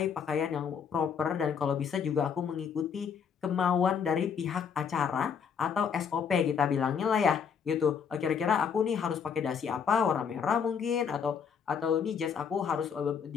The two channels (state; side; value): quieter; right; 6.8 dB